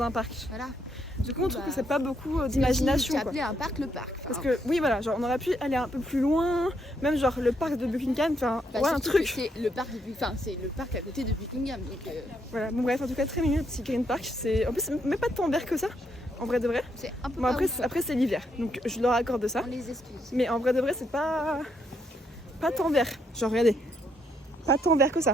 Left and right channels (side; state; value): both; normal; correlation 0.76